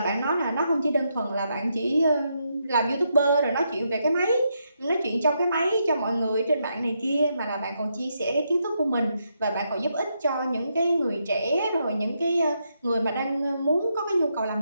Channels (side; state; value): both; inverted; correlation -0.80